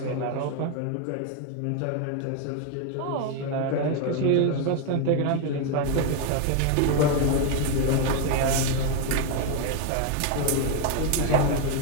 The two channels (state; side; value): different; both; correlation 0.01